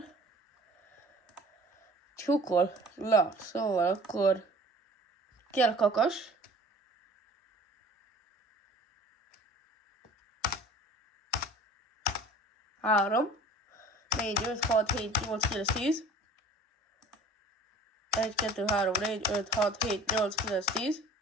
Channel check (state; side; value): normal; both; correlation 0.46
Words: Csukol. Na, szóval akkor kell kakas. Három. 4, 5, 6, 7, 8, 9, 10. 1, 2, 3, 4, 5, 6, 7, 8, 9, 10.